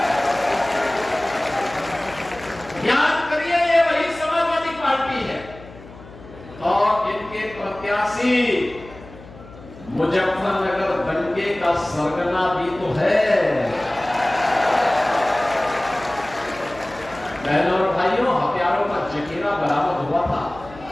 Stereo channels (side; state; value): left; noise; hum, 19 dB below the sound